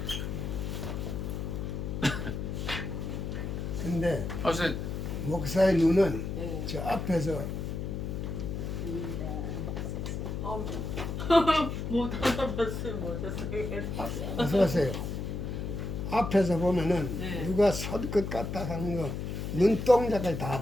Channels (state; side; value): noise; left; hum, 4 dB below the sound